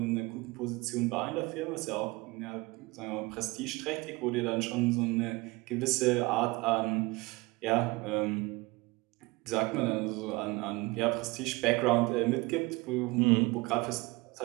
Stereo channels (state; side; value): quieter; left; 23.6 dB